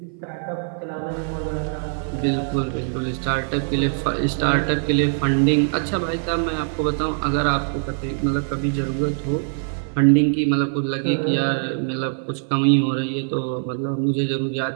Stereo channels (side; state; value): left; silent; 56 dB below the other